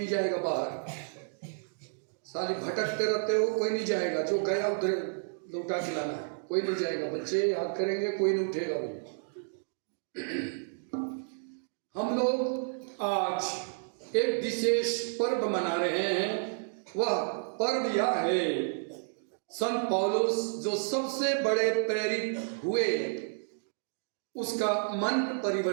जाएगा बाहर, साली भटकते रहते हो, कोई नहीं जाएगा, जो गया उधर लौटा के लाना है, कोई नहीं जाएगा। बच्चे याद करेंगे, कोई नहीं उठेगा भाई। हम लोग आज एक विशेष पर्व मना रहे हैं। वह पर्व यह है, संत पौलुस जो सबसे बड़े प्रेरित हुए उसका मन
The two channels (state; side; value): silent; left; digital silence